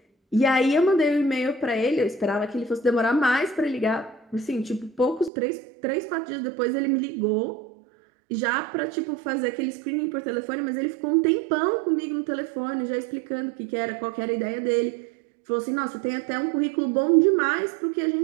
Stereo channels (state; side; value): drops out; left; at 5.3 s